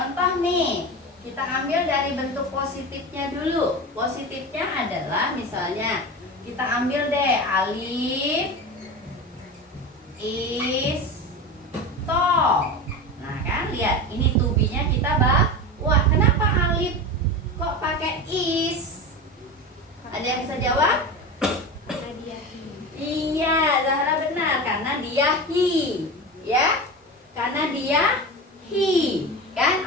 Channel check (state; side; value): normal; both; correlation 0.26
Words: nih, kita ambil dari bentuk positifnya dulu. Positifnya adalah misalnya kita ambil deh Alif is tall. Nah kan, lihat ini to be-nya kita bawa. Kenapa Alif kok pakai is? Ada yang bisa jawab? Karena dia he. Iya, Zahra benar, karena dia he, ya. Karena dia he. Kan